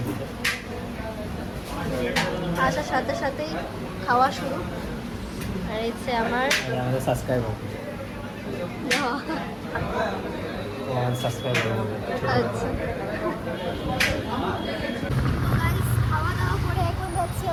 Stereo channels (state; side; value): identical; both; correlation 1.00